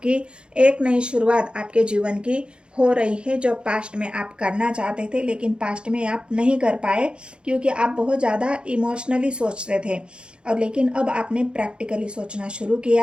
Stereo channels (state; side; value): late; left; 0.054 ms